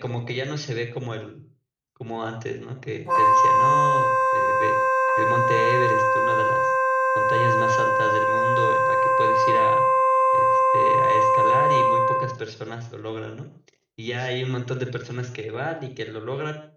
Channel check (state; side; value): identical; both; correlation 1.00